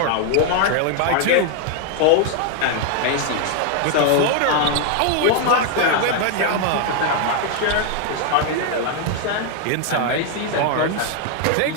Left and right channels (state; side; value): different; both; correlation 0.00